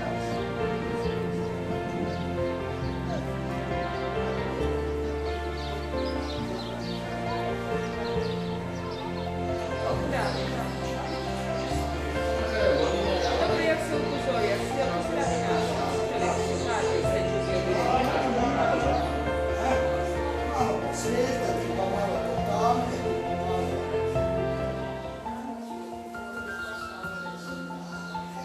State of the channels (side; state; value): both; identical; correlation 1.00